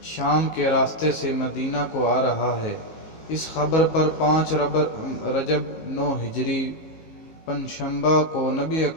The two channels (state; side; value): late; right; 19 ms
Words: شام کے راستے سے مدینہ کو آ رہا ہے۔ اس خبر پر 5 رجب 9 ہجری پنجشنبہ کو نبی